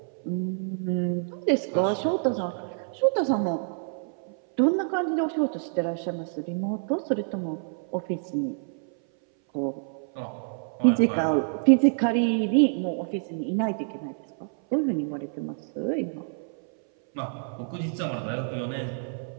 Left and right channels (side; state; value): left; silent; 58 dB below the other